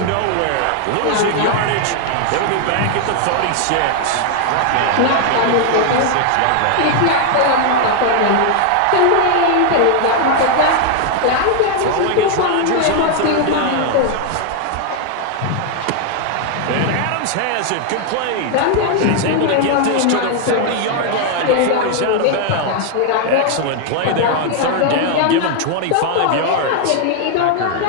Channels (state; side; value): different; both; correlation 0.00